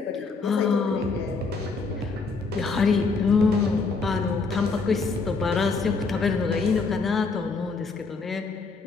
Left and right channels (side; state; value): right; quieter; 4.3 dB